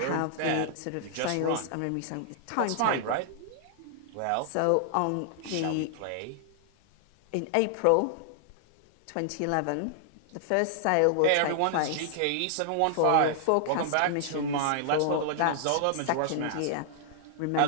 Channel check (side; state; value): both; different; correlation -0.01